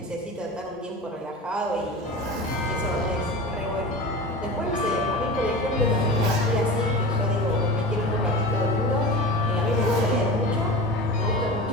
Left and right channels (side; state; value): both; normal; correlation 0.31